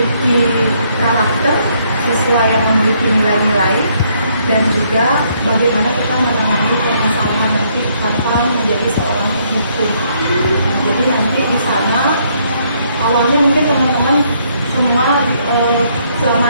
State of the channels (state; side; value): inverted; both; correlation -0.70